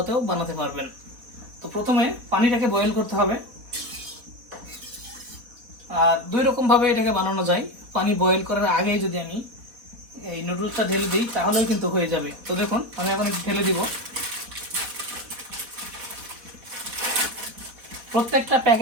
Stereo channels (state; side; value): late; left; 4.1 ms